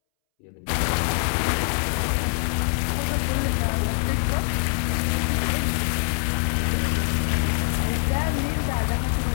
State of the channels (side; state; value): right; silent; 62 dB below the other